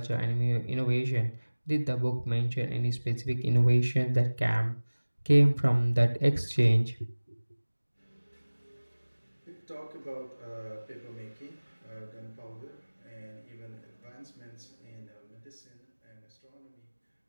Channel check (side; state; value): both; inverted; correlation -1.00